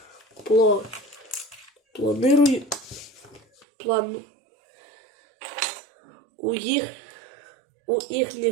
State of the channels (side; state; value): left; drops out; at 3.7 s